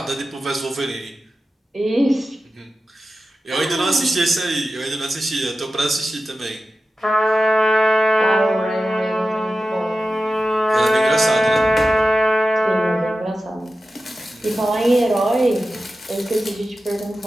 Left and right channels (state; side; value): normal; both; correlation 0.93